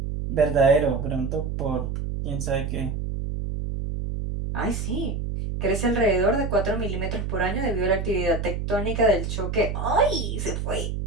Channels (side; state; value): right; noise; hum, 3 dB below the sound